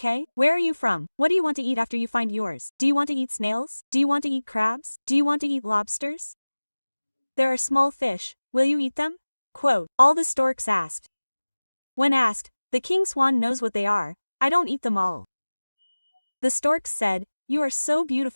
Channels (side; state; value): both; inverted; correlation -1.00